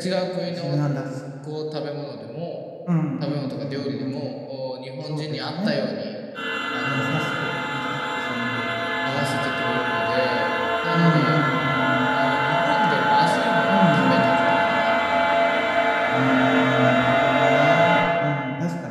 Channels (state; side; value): identical; both; correlation 1.00